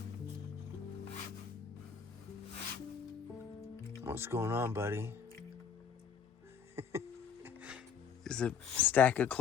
What's going on, buddy? There's a stack of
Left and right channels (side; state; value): right; quieter; 7.0 dB